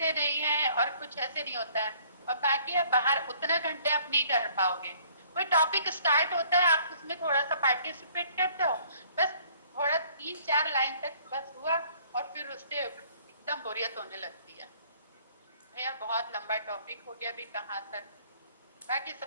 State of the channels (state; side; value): inverted; both; correlation -0.58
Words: नहीं है और कुछ ऐसे नहीं होता है। और बाकी आप बाहर उतना घंटे आप नहीं कर पाओगे। कोई टॉपिक स्टार्ट होता है, आप उसमें थोड़ा सा पार्टिसिपेट करते हो, बस थोड़ा 3-4 लाइन तक बस हुआ और फिर उससे एकदम बोरियत होने लगती है। भैया बहुत लंबा टॉपिक हो गया, अभी कहाँ तक, बाकी